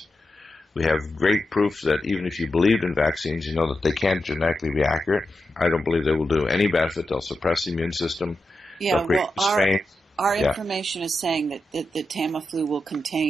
We have great proof that even if you believed in vaccines, you know that they can't genetically be accurate. I don't believe they will do any benefit. They'll suppress the immune system. Yeah, They'll create strains. Our information is saying that the Tamiflu will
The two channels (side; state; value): both; normal; correlation 0.88